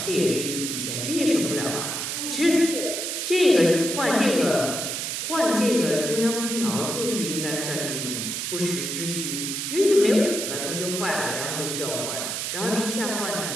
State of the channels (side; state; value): right; noise; hiss, 3 dB below the sound